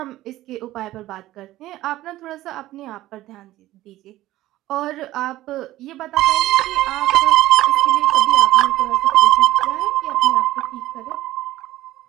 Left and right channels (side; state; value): left; quieter; 15.7 dB